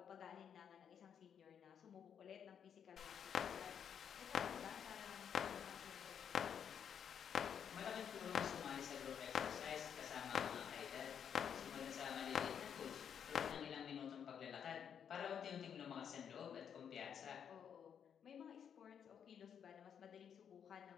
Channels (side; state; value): right; quieter; 8.1 dB